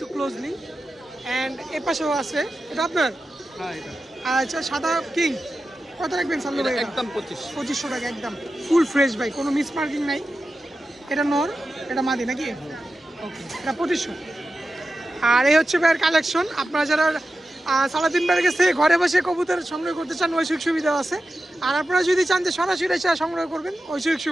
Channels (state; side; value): normal; both; correlation 0.93